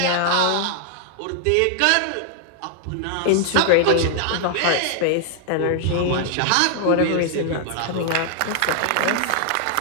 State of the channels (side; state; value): both; different; correlation 0.00